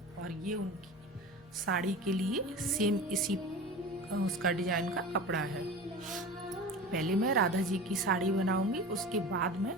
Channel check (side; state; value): both; normal; correlation 0.33